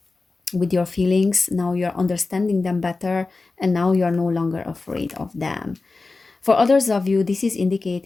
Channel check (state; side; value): quieter; right; 3.7 dB